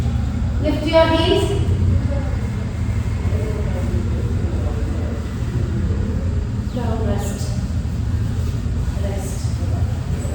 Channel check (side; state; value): both; identical; correlation 1.00